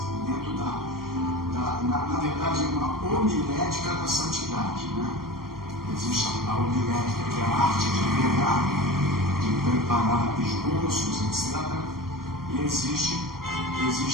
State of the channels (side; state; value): left; late; 0.92 ms